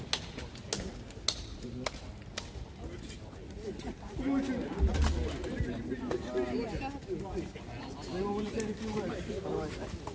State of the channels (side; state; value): both; identical; correlation 1.00